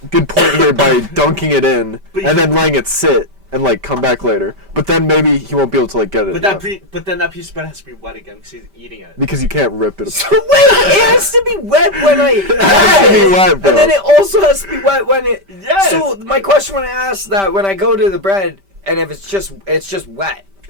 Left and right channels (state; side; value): late; left; 5.1 ms